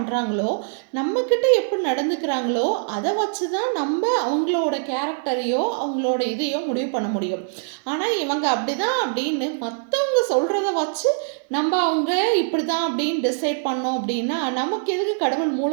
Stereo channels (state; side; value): silent; left; 58 dB below the other